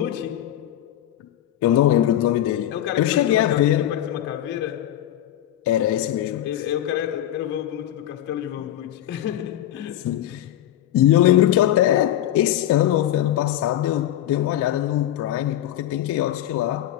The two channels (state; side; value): quieter; right; 12.2 dB